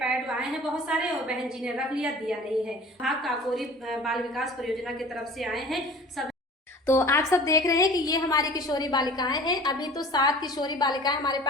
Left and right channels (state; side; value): normal; both; correlation 0.44